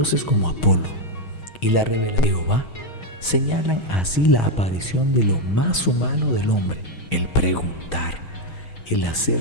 como Apolo y la revelación de Jehová señalan así la aparición de lo más humano del hombre, el preguntar, el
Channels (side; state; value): right; late; 6.3 ms